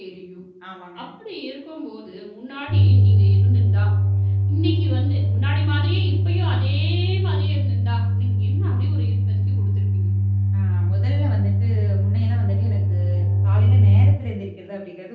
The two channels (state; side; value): identical; both; correlation 1.00